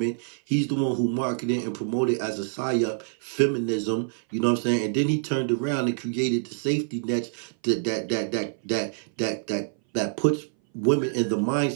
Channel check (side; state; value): left; silent; 59 dB below the other